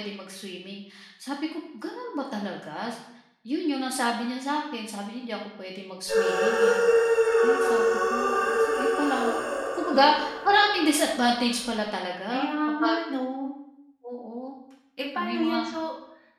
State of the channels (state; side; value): identical; both; correlation 1.00